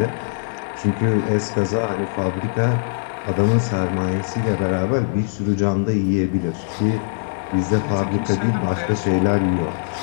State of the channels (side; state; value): right; silent; 64 dB below the other